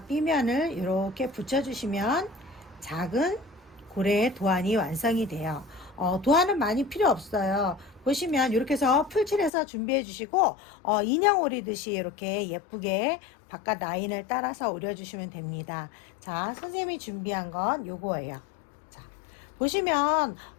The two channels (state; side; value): drops out; right; at 9.5 s